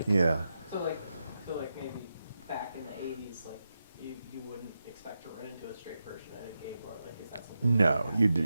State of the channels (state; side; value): inverted; both; correlation -0.89